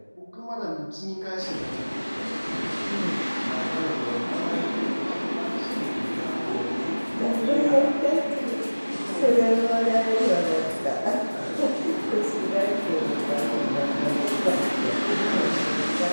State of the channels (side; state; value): both; inverted; correlation -1.00